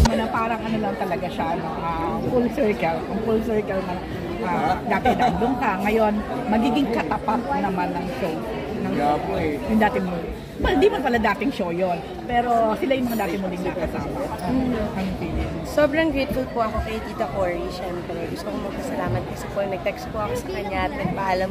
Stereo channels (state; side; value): identical; both; correlation 1.00